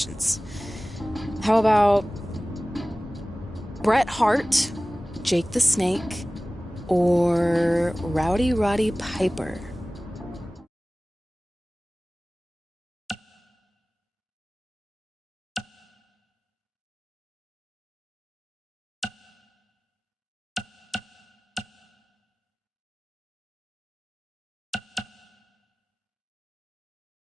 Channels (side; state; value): both; normal; correlation 0.98